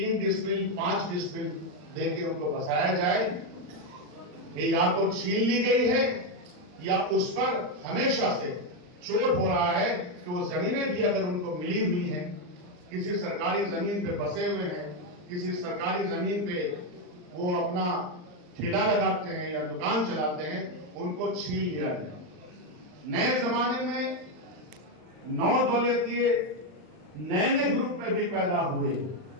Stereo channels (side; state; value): left; late; 39 ms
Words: डिसमिल 5 डिसमिल देके उनको बसाया जाए, ये या तो छीन ली गई है या उस पर हमेशा से चोट हो रहा है कि वो जमीनें भी अगर उनको मिली हुई हैं, किसी सरकारी जमीन पे बसे हुए हैं, किसी सरकारी जमीन पे वो अपना ठेला लगाते हैं या दुकान चलाते हैं, उनको छीन लिया जाए। नए जमाने में 9 दौलतिये नए ग्रुप में भी पैदा हुए,